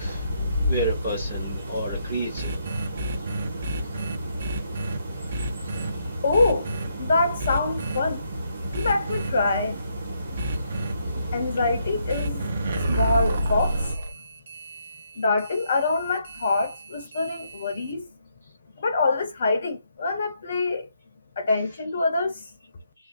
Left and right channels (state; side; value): inverted; both; correlation -0.76